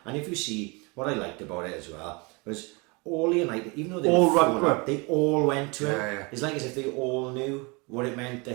And if you see what I liked about it as well was all the United, even though they All were run falling to up, they all went to him. Yeah. It's like as if they all knew what it meant to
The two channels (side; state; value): left; quieter; 28.7 dB